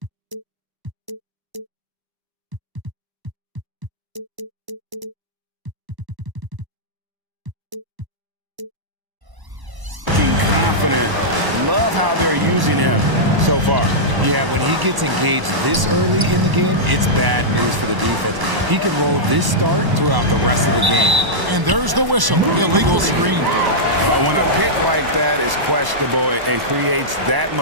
Confident. Love how they're using him so far. Yeah, when he gets engaged this early in the game, it's bad news for the defense. He can roll this start throughout the rest of the game. And there's the whistle. Illegal screen. When a pick like that is questionable and creates that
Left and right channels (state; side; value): late; left; 1.0 ms